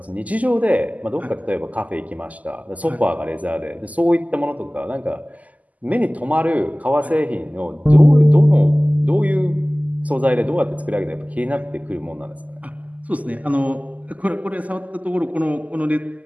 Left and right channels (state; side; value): late; left; 0.076 ms